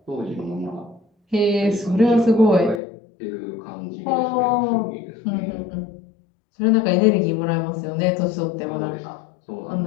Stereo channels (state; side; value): drops out; right; at 2.8 s